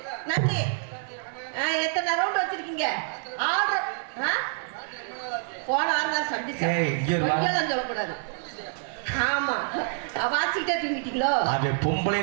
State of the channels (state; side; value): silent; left; digital silence